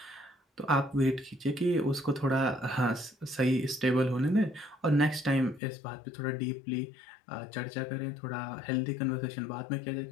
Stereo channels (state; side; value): drops out; right; at 5.6 s